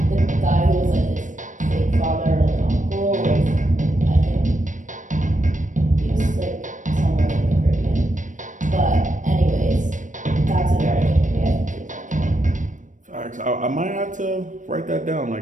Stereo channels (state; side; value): late; left; 0.37 ms